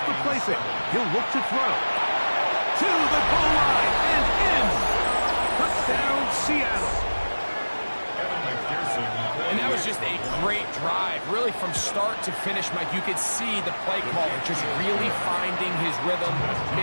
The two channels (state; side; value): inverted; both; correlation -1.00